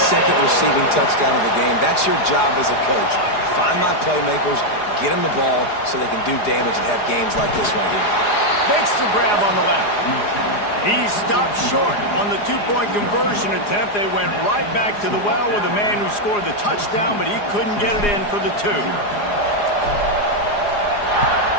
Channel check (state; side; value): late; right; 4.9 ms